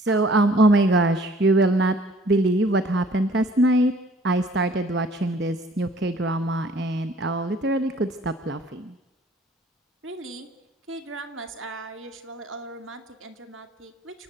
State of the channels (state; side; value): normal; both; correlation 0.56